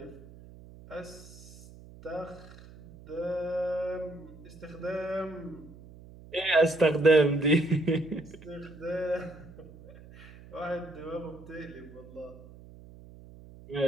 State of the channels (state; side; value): noise; right; hum, 19 dB below the sound